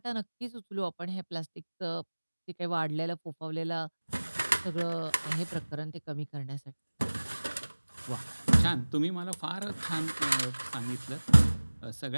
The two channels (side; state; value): both; inverted; correlation -1.00